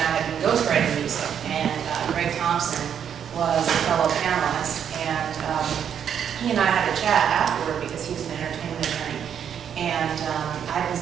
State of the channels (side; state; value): left; quieter; 8.4 dB